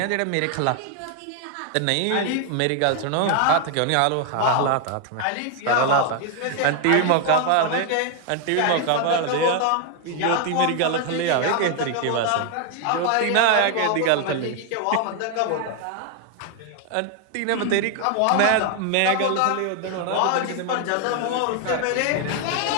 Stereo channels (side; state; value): both; different; correlation 0.00